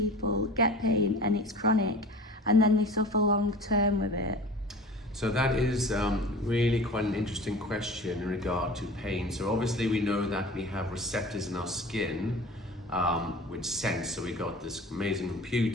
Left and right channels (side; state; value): both; normal; correlation 0.39